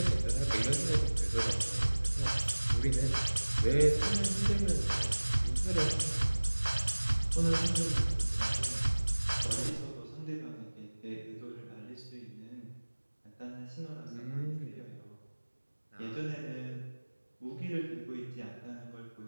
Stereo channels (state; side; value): inverted; both; correlation -1.00